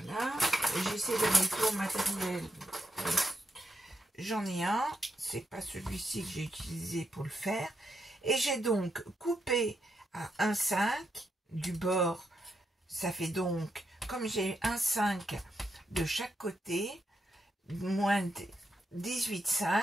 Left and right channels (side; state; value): both; normal; correlation 0.83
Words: j'essaie d'aller pour matériel, j'en ai un, c'est pas celui-ci que j'ai utilisé pour le faire, et j'ai donc coupé à 1,5 du bord, ça fait donc comme j'ai un 5 de chaque côté, moins